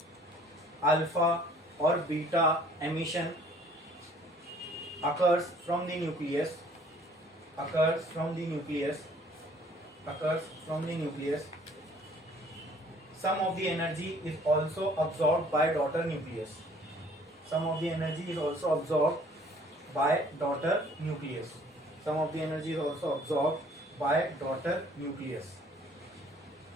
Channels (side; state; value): both; normal; correlation 0.57